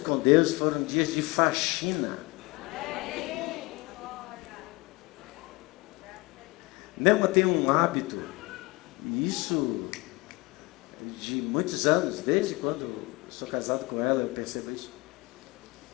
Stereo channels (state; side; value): quieter; right; 23.6 dB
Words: com Deus foram dias de faxina. Nelma tem um hábito, e isso de muitos anos, desde quando eu sou casado com ela, eu percebo isso.